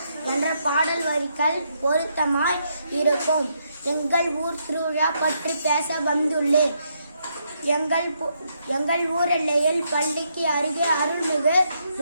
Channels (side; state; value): both; inverted; correlation -0.77